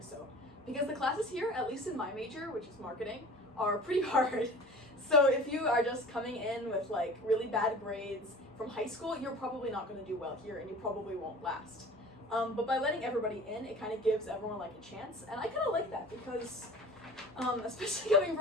so. Because the classes here, at least in my major, which is marketing, are pretty hard. So if you are just coming in with like really bad grades from high school, you're probably not going to do well here and you probably won't last. But by letting everybody in, it kind of gives everyone like a chance, and I kind of like that because especially coming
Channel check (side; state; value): both; normal; correlation 0.42